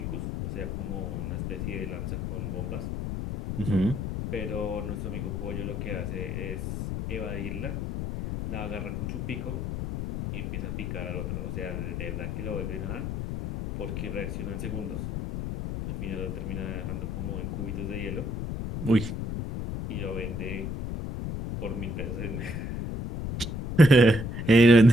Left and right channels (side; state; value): left; noise; rumble, 3 dB below the sound